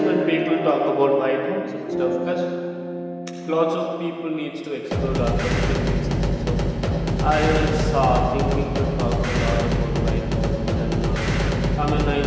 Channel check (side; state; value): both; identical; correlation 1.00